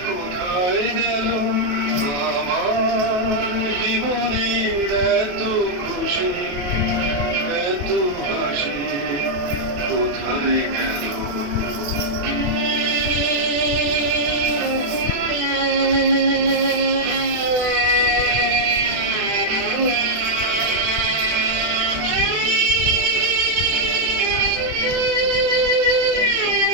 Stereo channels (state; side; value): late; left; 28 ms